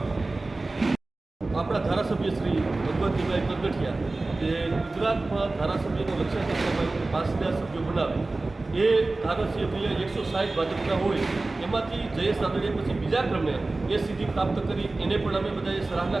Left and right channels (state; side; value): quieter; left; 3.2 dB